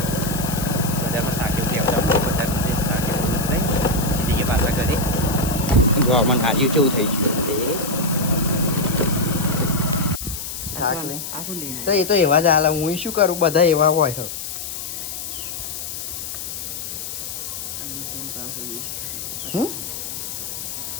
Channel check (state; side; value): noise; left; hiss, 7 dB below the sound